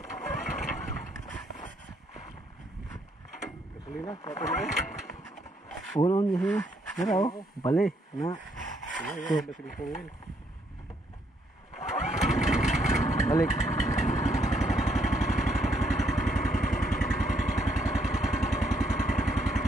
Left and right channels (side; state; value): both; normal; correlation 0.72